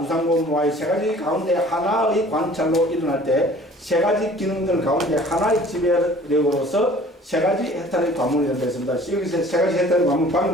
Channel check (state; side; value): normal; both; correlation 0.50